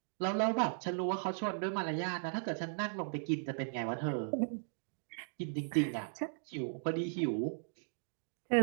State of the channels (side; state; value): left; silent; digital silence